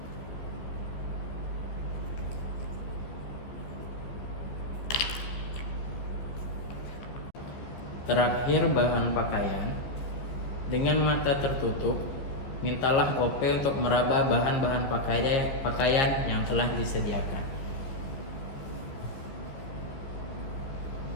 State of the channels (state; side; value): late; right; 14 ms